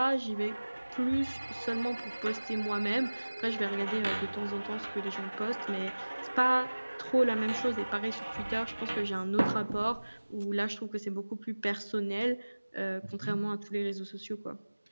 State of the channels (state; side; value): inverted; both; correlation -1.00